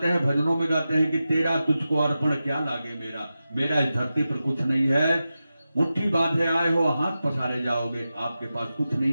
हैं, भजनों में गाते हैं कि तेरा तुझको अर्पण क्या लागे मेरा, मेरा इस धरती पर कुछ नहीं है। मुट्ठी बांधे आए हो, हाथ पसारे जाओगे, आपके पास कुछ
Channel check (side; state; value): both; inverted; correlation -0.92